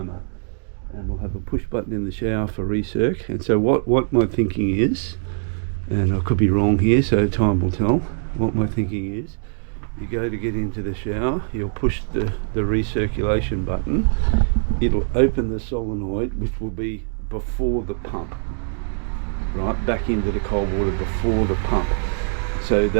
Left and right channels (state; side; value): silent; left; digital silence